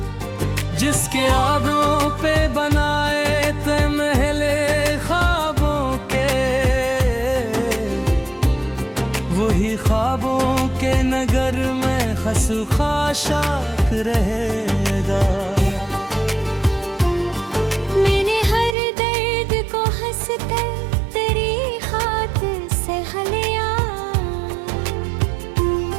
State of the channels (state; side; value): drops out; left; at 18.8 s